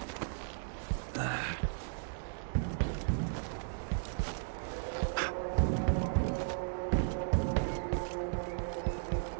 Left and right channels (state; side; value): silent; left; digital silence